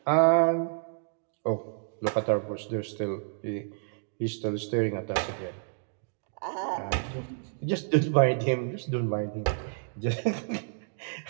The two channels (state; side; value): silent; left; digital silence